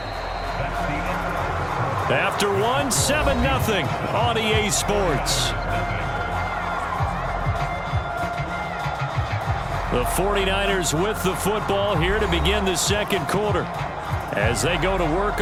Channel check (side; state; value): both; identical; correlation 1.00